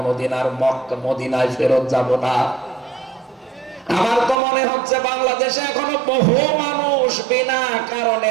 আর মক্কা মদিনায় ফেরত যাব না। আমার তো মনে হচ্ছে বাংলাদেশে এখনো বহু মানুষ বিনা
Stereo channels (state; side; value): drops out; left; at 4.4 s